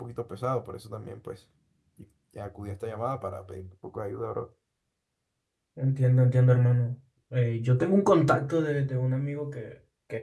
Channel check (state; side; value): identical; both; correlation 1.00